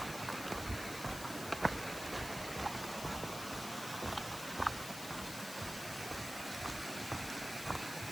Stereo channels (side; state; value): left; noise; hiss, 8 dB below the sound